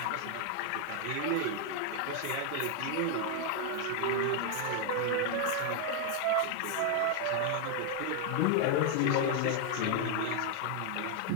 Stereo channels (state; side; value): different; both; correlation 0.00